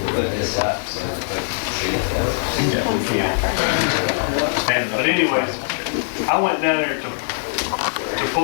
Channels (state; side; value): silent; right; 58 dB below the other